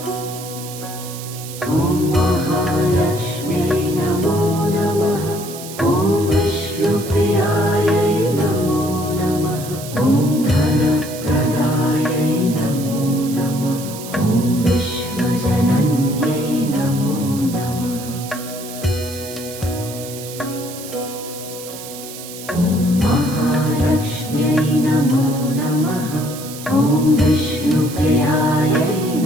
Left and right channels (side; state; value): right; noise; hiss, 12 dB below the sound